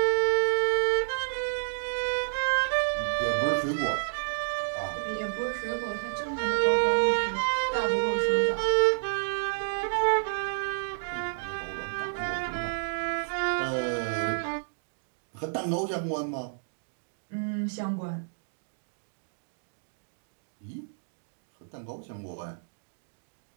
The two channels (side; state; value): left; silent; digital silence